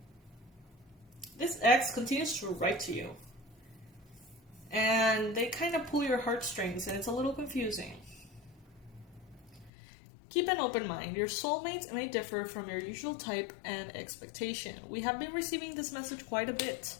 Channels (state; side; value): drops out; right; at 9.7 s